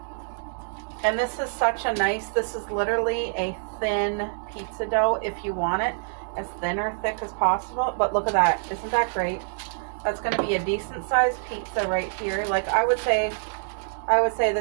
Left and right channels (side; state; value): left; silent; digital silence